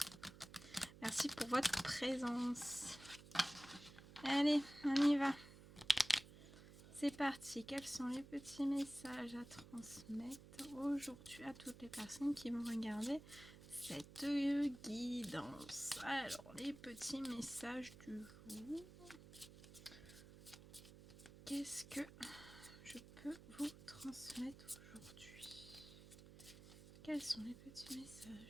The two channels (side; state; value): right; noise; hum, 17 dB below the sound